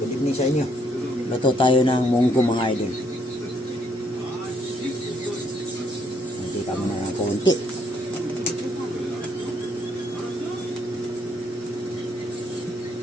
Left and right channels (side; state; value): both; normal; correlation 0.71